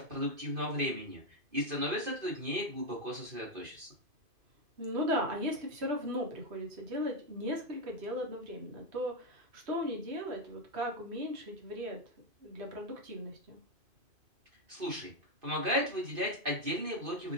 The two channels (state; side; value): late; left; 2.5 ms